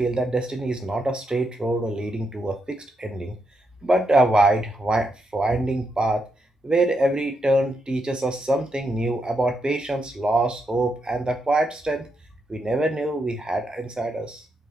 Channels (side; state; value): both; normal; correlation 0.82